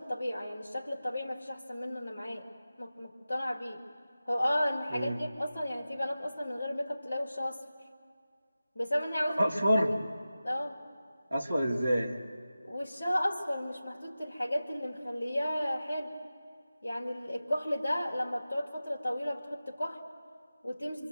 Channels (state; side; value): inverted; both; correlation -0.95